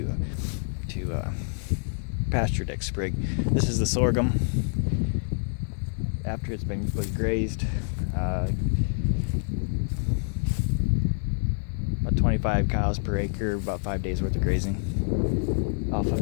pasture next spring. This is the sorghum after it's was grazed. About 25 cows per acre, about 5 days worth of grazing off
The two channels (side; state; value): right; silent; 60 dB below the other